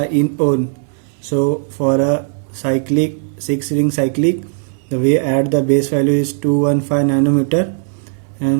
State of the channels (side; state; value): left; silent; 62 dB below the other